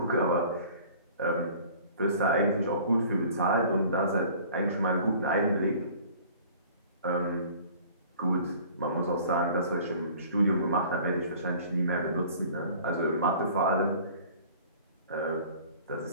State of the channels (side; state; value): both; inverted; correlation -0.48